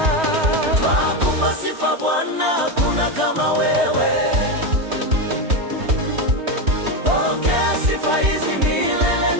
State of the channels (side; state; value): left; late; 3.2 ms